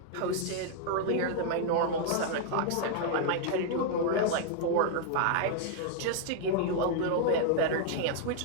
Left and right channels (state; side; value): different; both; correlation -0.01